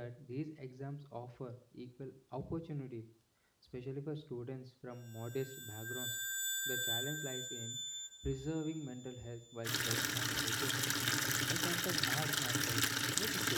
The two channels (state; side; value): identical; both; correlation 1.00